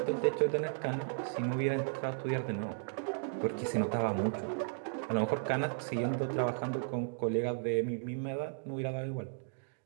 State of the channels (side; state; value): left; silent; digital silence